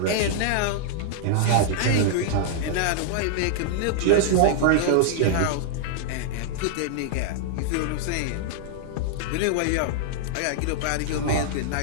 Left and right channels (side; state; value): both; different; correlation -0.01